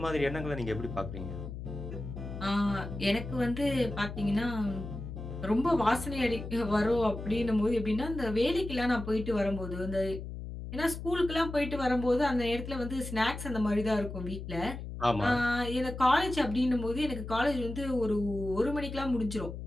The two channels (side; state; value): left; noise; hum, 8 dB below the sound